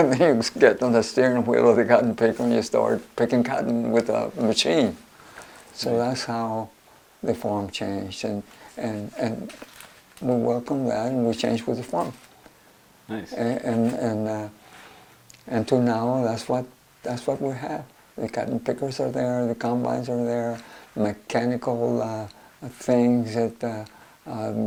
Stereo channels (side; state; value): both; identical; correlation 1.00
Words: then you get on the steering wheel of the cotton picker and you start picking cotton with a machine. So that's how the farm changed, and we welcome that, and we changed with the farm. Nice. And to now, that's what we have. The cotton pickers are there, the combines are there, mechanical things that